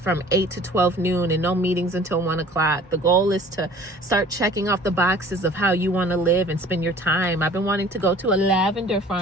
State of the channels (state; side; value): normal; both; correlation 0.49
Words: 8 to 12 noon and no meetings until 1 o'clock. The goal is to start checking off the boxes of how you want to live and spend your time. I've been wanting to go to a lavender